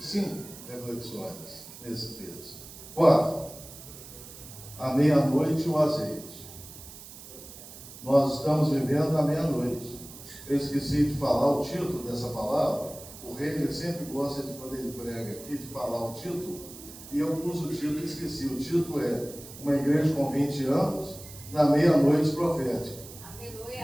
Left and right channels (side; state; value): right; noise; hiss, 16 dB below the sound